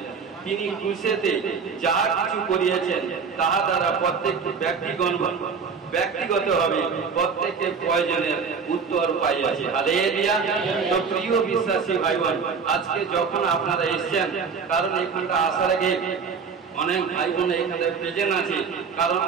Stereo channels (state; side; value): quieter; left; 5.7 dB